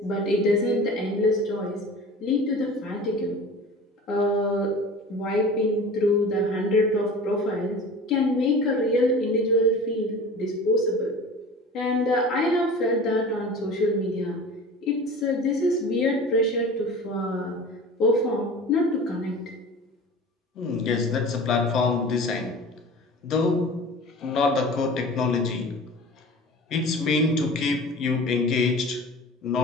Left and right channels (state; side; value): normal; both; correlation 0.38